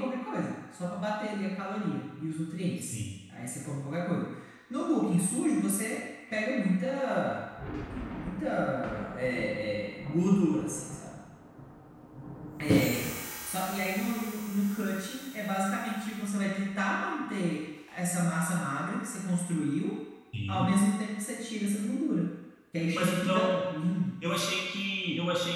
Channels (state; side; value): identical; both; correlation 1.00